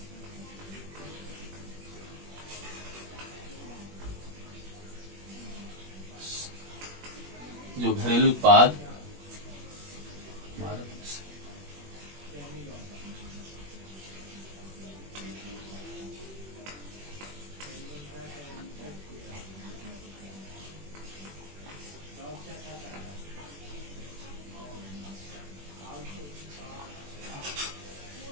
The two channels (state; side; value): late; left; 21 ms